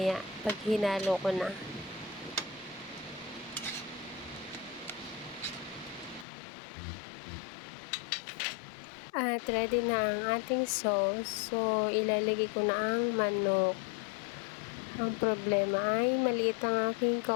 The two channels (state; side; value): drops out; right; at 6.2 s